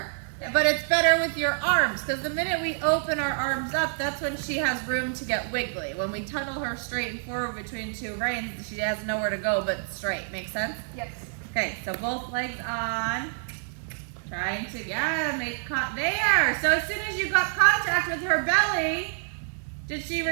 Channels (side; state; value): left; silent; digital silence